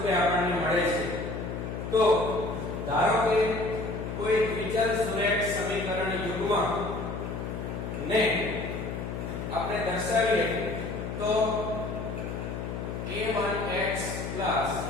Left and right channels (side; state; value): left; noise; hum, 5 dB below the sound